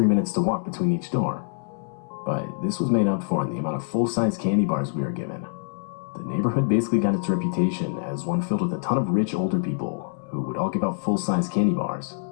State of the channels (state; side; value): silent; right; 62 dB below the other